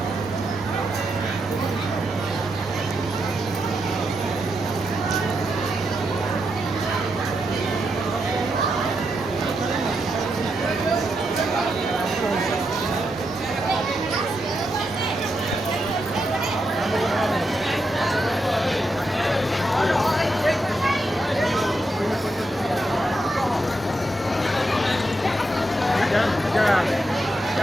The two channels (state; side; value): normal; both; correlation 0.83